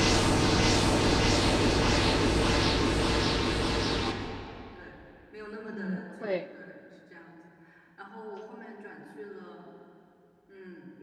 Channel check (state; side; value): identical; both; correlation 1.00